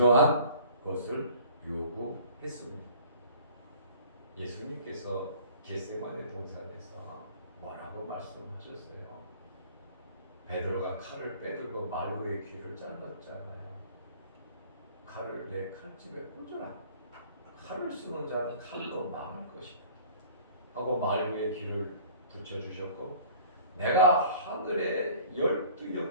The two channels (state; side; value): inverted; both; correlation -0.50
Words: 것을 요구했습니다. 예수님께서 겟세마네 동산에서 뭐라고 말씀하셨어요? 베드로가 칼을 빼들고 말구의 귀를 잘랐잖아요. 칼을 내 칼집에 꽂으라. 칼을 쓰는 자는 칼로 망할 것이다 하고 말구의 귀를 붙여주셨고, 내가 하늘에